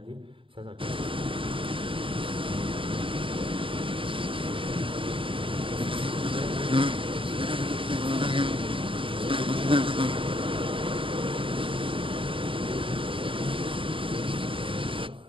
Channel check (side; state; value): left; late; 0.25 ms